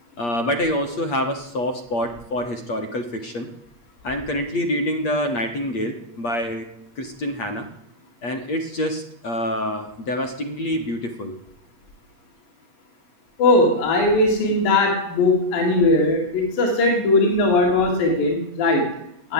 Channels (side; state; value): right; late; 8.5 ms